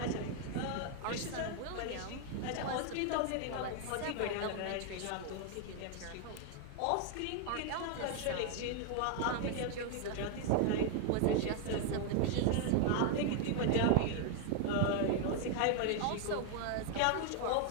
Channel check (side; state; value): both; different; correlation 0.00